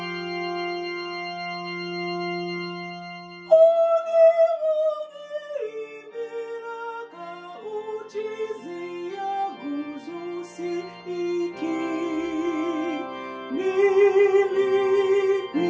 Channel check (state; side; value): identical; both; correlation 1.00